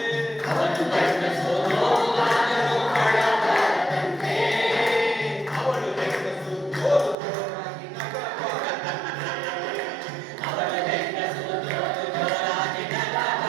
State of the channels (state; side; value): drops out; left; at 7.2 s